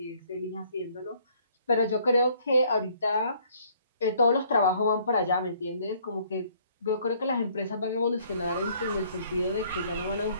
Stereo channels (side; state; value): both; inverted; correlation -0.62